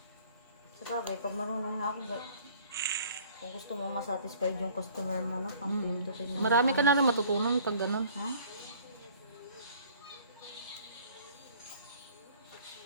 Sa bagay, pag marunong na ako, kung gusto mong masatisfied yung customer mo, no? Ang pindutin mo. Marami ka na rin matutunan pag ganun. Ha?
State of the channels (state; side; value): inverted; both; correlation -0.53